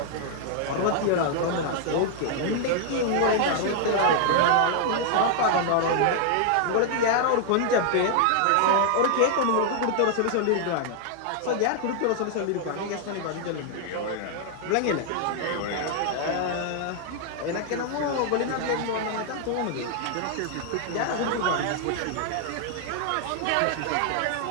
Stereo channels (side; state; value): both; different; correlation 0.00